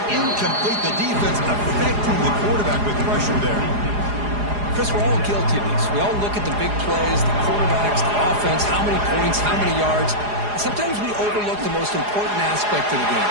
incomplete. The defense affecting the quarterback with pressure there. Chris, we're all guilty of this. We all look at the big plays, the quarterbacks, the offense, how many points, how many yards. Sometimes we overlook the most important aspect of the game,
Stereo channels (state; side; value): late; left; 4.8 ms